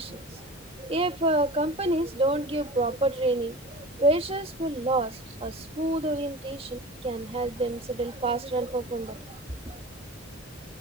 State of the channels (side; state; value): both; normal; correlation 0.35